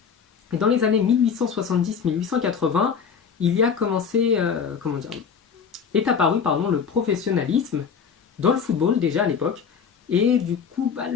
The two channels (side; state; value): right; quieter; 6.5 dB